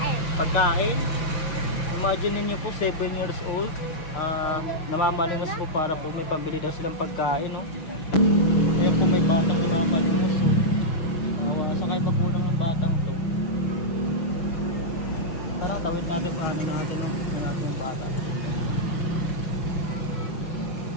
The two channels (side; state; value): right; late; 6.1 ms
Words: pagkain? Imagine niyo po, 7 years old. Namamalimos po para po may pambili daw silang pagkain, no? Kaya kung may tatang namamalimos. Sakay pa po ng batang po. Tawid natin paano natin, no?